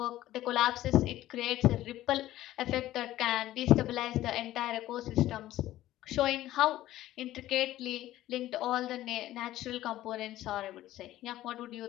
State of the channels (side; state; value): right; quieter; 14.6 dB